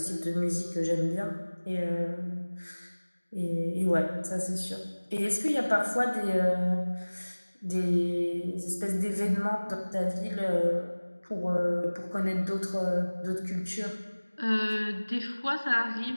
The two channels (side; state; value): both; inverted; correlation -1.00